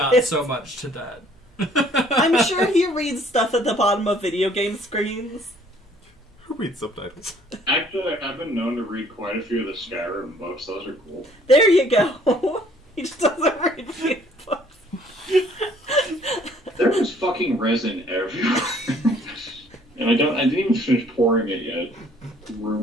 so much to that. I'm sure he reads stuff at the bottom of video game screens. Who reads subtitles? Actually, I've been known to read quite a few of the Skyrim books. Those are cool. There you go. He just doesn't read video books. There was fucking resin everywhere. And I didn't even finish pouring it yet.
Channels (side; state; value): both; normal; correlation 0.59